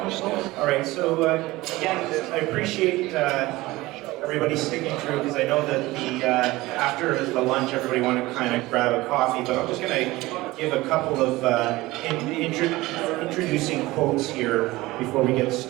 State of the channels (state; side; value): quieter; left; 19.3 dB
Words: All right, so again, I appreciate everybody sticking through because I know that after the lunch everybody wanted to kind of grab a coffee, but I'm just going to give a couple of introducing quotes here before we get